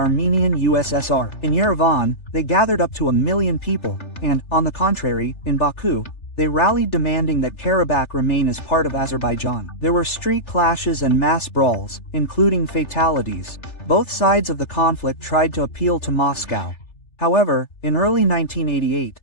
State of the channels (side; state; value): right; late; 3.4 ms